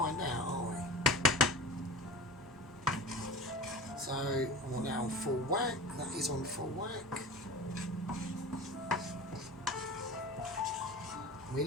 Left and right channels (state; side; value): normal; both; correlation 0.32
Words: out, are we? So, I want that on full whack. That is on full whack.